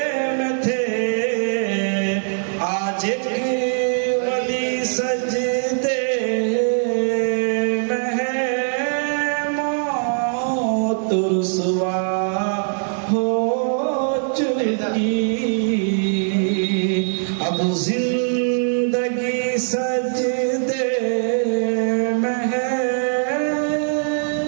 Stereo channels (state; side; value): silent; left; digital silence